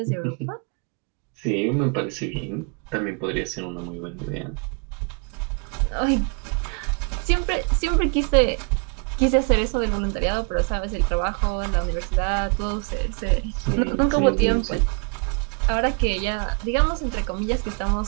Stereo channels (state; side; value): quieter; left; 36.4 dB